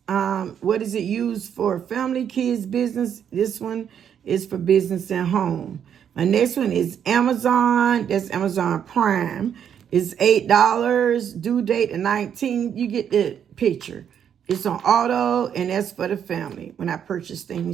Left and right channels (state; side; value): quieter; left; 8.6 dB